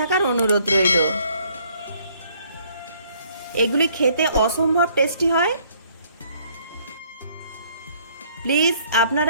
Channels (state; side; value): inverted; both; correlation -0.62